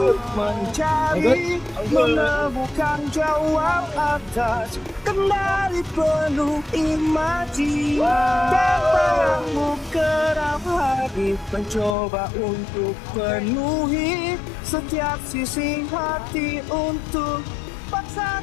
mencari, menemukan jawab atas kembali penuh imaji dan bayangmu kerap hari mencoba untuk penuhi setiap sisi hati untuk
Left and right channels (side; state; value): right; drops out; at 12.0 s